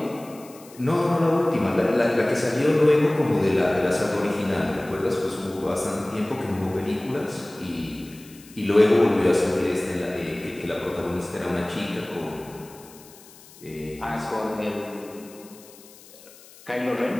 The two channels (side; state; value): left; noise; hiss, 22 dB below the sound